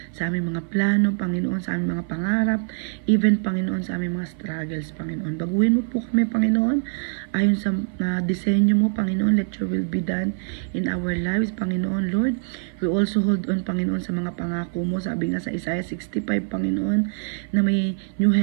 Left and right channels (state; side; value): silent; left; 56 dB below the other